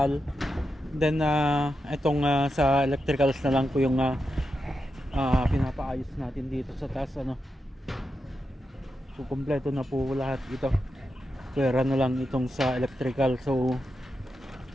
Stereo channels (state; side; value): normal; both; correlation 0.88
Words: Then itong sa electricals na lang po yung pinapaayos natin dito sa taas So kumpleto na po lahat ito. Pwera na lang itong sa electrical. So